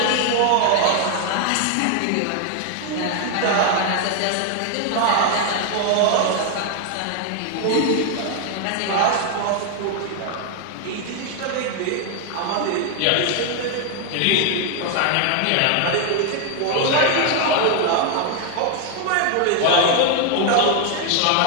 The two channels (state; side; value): different; both; correlation 0.00